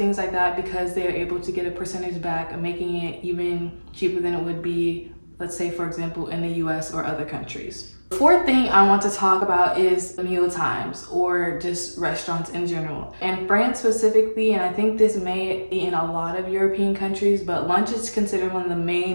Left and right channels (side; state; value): both; inverted; correlation -1.00